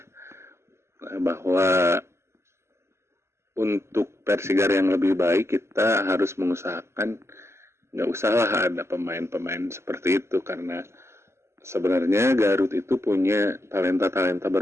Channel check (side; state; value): left; late; 0.13 ms